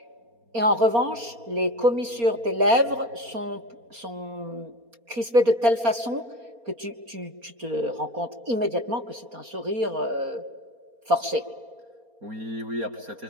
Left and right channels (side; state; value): left; late; 4.3 ms